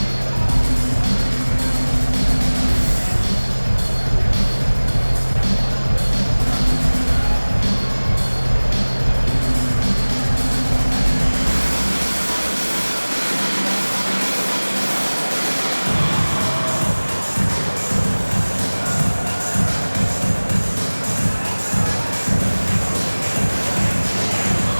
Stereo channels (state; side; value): inverted; both; correlation -1.00